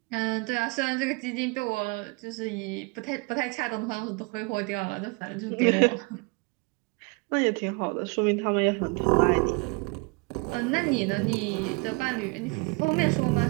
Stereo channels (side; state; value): left; quieter; 28.4 dB